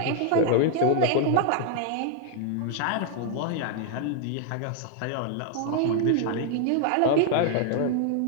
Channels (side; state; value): both; different; correlation 0.00